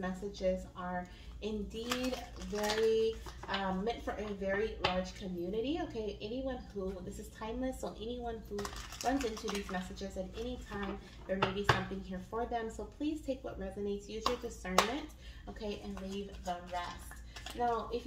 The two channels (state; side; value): identical; both; correlation 1.00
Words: are indeed very meant for a very large community, okay. Anyone who, this is timeless, so anyone who runs into these messages at any time, there may be something here for them. So please take what resonates, use your discernment, okay, and leave the rest. Now, if